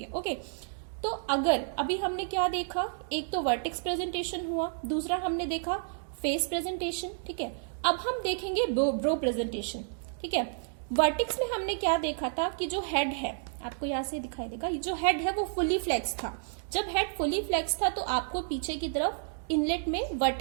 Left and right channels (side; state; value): left; silent; digital silence